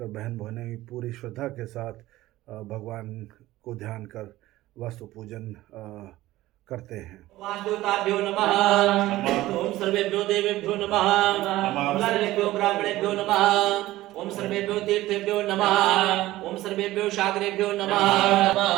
बहन बहनें पूरी श्रद्धा के साथ भगवान को ध्यान कर वास्तु पूजन करते हैं। वासुदेवताभ्यो नमः, ओम सर्वेभ्यो देवेभ्यो नमः, ओम सर्वेभ्यो ब्राह्मणेभ्यो नमः, ओम सर्वेभ्यो तीर्थेभ्यो नमः, ओम सर्वेभ्यो सागरेभ्यो नमः।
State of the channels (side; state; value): left; quieter; 16.6 dB